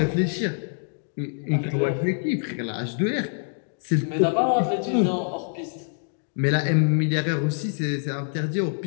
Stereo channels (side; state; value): right; silent; digital silence